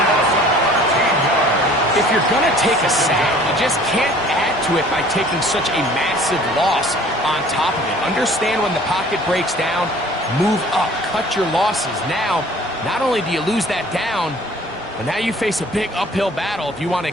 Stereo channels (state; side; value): normal; both; correlation 0.51